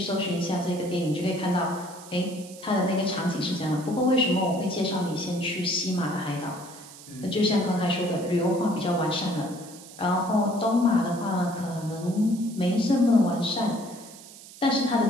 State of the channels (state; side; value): noise; right; hiss, 18 dB below the sound